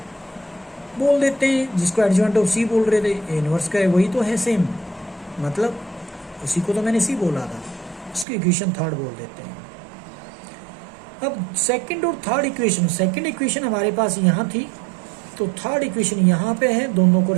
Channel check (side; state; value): left; drops out; at 8.2 s